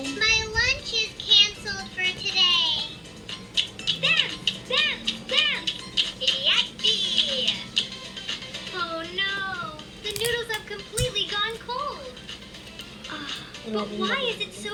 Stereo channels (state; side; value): identical; both; correlation 1.00